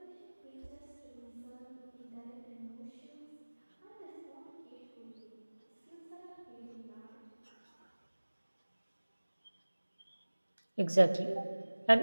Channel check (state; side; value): inverted; both; correlation -1.00